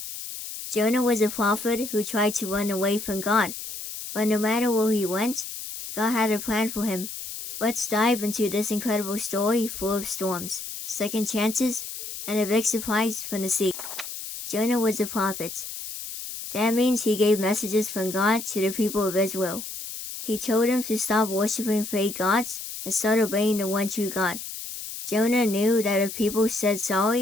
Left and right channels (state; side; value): noise; left; hiss, 9 dB below the sound